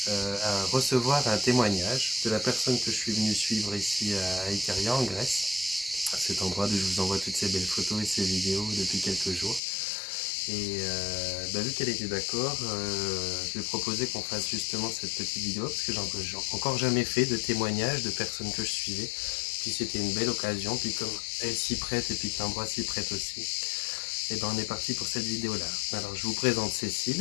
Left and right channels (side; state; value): right; drops out; at 9.6 s